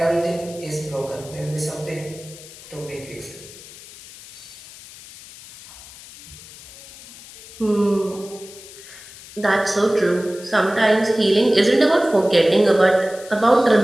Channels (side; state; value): left; noise; hiss, 18 dB below the sound